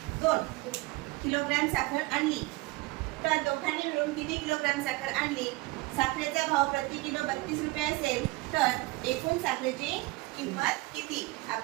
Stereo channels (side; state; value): left; quieter; 21.8 dB